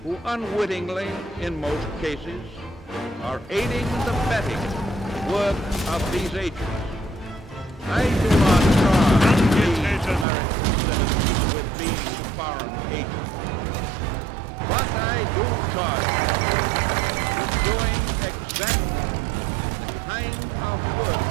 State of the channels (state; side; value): drops out; left; at 10.2 s